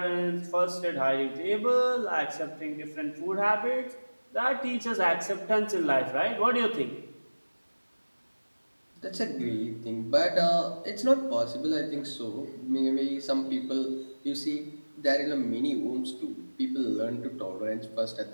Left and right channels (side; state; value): both; inverted; correlation -1.00